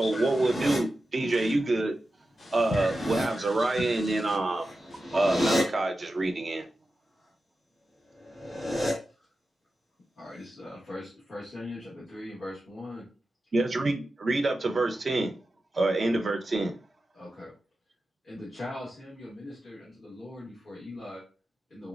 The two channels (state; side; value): normal; both; correlation 0.92